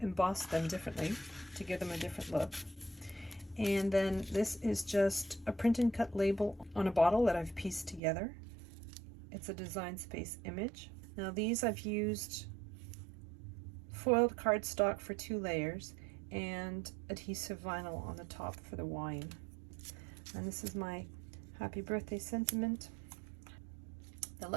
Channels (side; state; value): left; drops out; at 8.0 s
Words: embossed them differently to give them a different look. And then this is just a print and cut label on a bottle that I've pieced together. It's a Design Space image. Now these I've used foiled cardstock for 2 layers and adhesive vinyl on the top for the wine. And this is my happy birthday sentiment. The